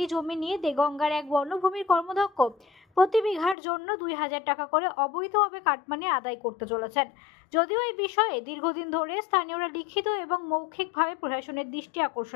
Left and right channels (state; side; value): drops out; right; at 3.6 s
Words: জমি নিয়ে দেগঙ্গার এক বনভূমির কর্মদক্ষ প্রতি বিঘার জন্য 2000 টাকা করে অবৈধভাবে কাটমানি আদায় করতে চলেছেন। যদিও এই বিষয়ে দীর্ঘদিন ধরে স্থানীয়রা লিখিত এবং মৌখিকভাবে প্রশাসনের দৃষ্টি